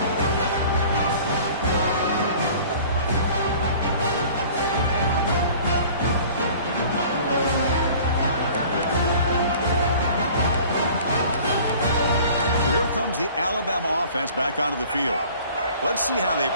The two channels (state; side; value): inverted; both; correlation -0.48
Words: So here comes the Alabama offense back onto the field. Let's see how they